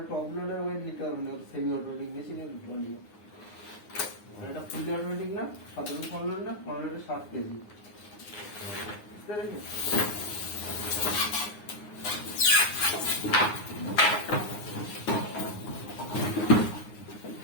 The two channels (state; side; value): late; right; 9.6 ms